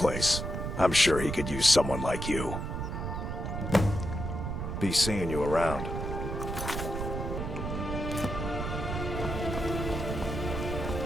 I'm sure he could use someone like you. Be seeing you around.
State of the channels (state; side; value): noise; right; rumble, 4 dB below the sound